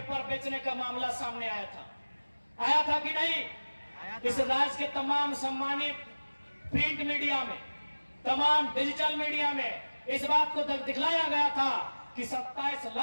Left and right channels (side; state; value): both; inverted; correlation -1.00